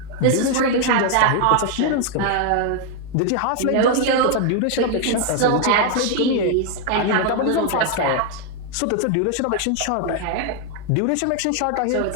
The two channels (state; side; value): different; both; correlation 0.00